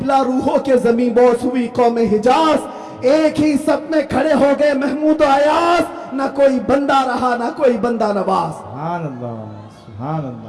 रूहों के जमी बोस हुई कौम हिजाज। एक ही सब में खड़े हो गए महमूद अयाज, ना कोई बंदा रहा ना कोई बंदा नवाज। सुभान अल्लाह, सुभान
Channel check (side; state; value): both; identical; correlation 1.00